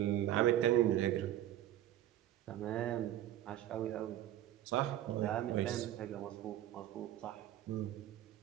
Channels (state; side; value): quieter; left; 12.8 dB